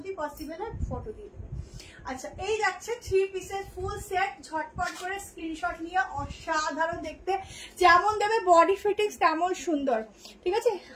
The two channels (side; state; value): both; identical; correlation 1.00